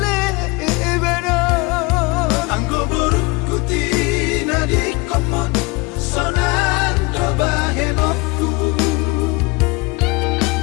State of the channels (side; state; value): right; quieter; 25.4 dB